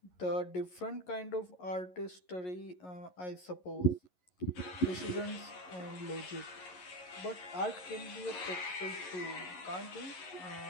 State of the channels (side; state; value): right; late; 11 ms